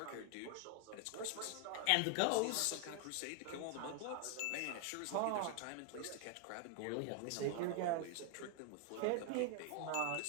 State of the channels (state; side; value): different; both; correlation 0.00